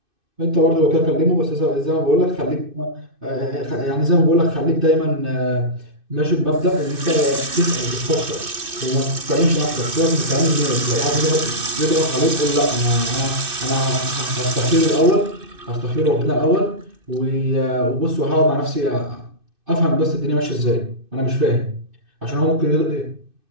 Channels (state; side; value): late; left; 2.6 ms